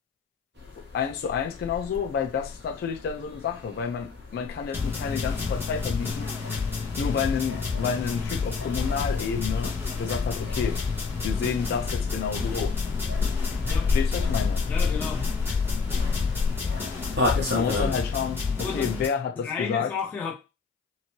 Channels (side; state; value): right; quieter; 5.0 dB